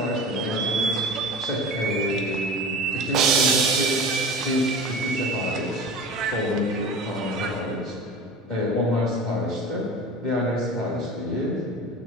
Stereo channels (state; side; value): normal; both; correlation 0.35